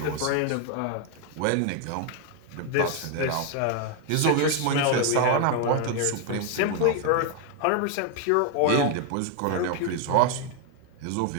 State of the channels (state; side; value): different; both; correlation 0.01